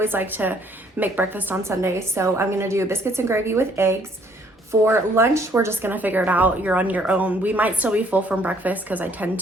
like to make breakfast on Sunday. So I'm gonna do biscuits and gravy with eggs. For lunch, we're just gonna figure it out. You're on your own. We might still be full from breakfast because I tend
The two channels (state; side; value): normal; both; correlation 0.63